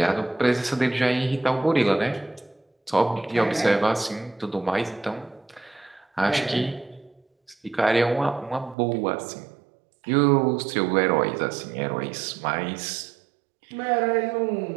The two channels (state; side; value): drops out; left; at 8.8 s